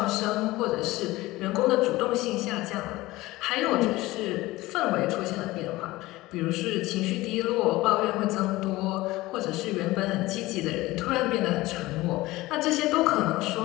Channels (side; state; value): right; quieter; 18.9 dB